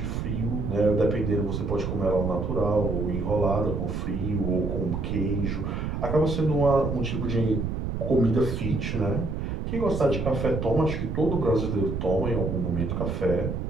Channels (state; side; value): noise; right; rumble, 2 dB below the sound